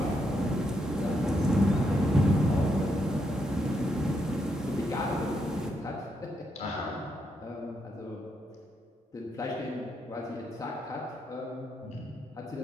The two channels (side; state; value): both; normal; correlation 0.79